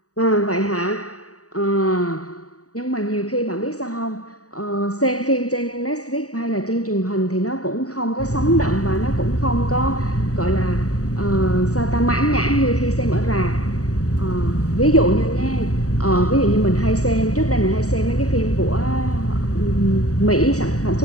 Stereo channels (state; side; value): late; right; 0.66 ms